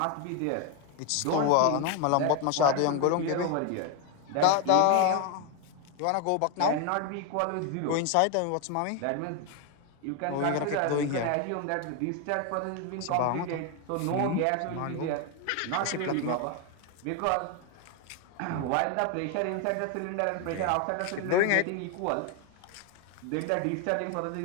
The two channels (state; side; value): different; both; correlation 0.01